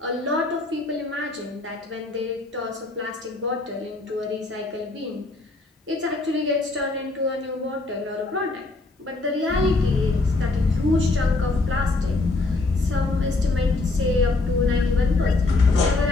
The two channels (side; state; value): right; quieter; 3.3 dB